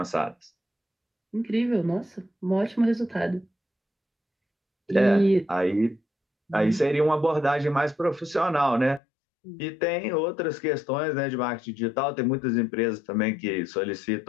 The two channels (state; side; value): drops out; right; at 9.0 s